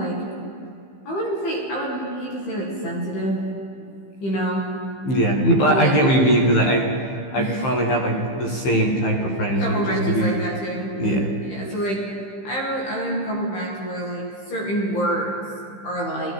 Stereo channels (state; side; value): late; right; 15 ms